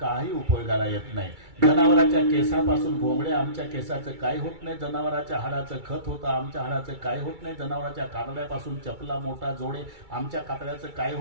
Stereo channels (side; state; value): left; late; 2.3 ms